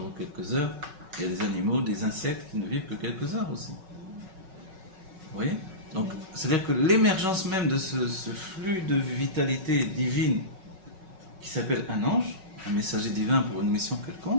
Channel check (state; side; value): late; left; 5.4 ms